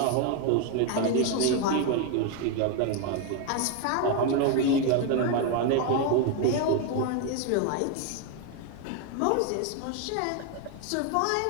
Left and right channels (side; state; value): both; different; correlation 0.01